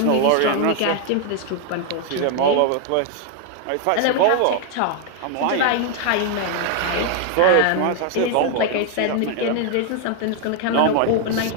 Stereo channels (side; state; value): both; different; correlation 0.00